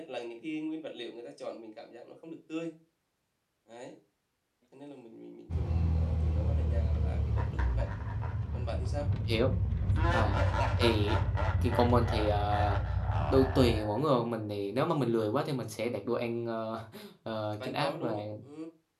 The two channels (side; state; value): both; identical; correlation 1.00